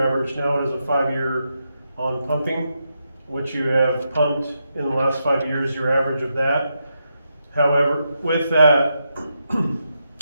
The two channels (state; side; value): inverted; both; correlation -0.84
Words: average, now it is a 5-year on pumping, which you have pumped in the last 5 years, your average of that. However, with that,